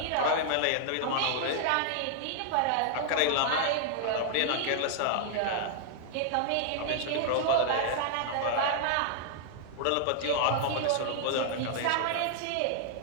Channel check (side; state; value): both; different; correlation -0.01